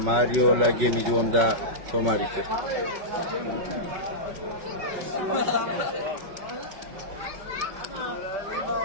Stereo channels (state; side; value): late; left; 5.3 ms